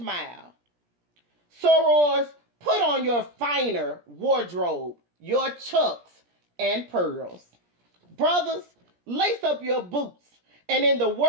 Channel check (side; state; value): left; late; 17 ms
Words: Sorors, put on your finer wardrobe, your chucks and pearls. Brothers, lace up your boots, and in the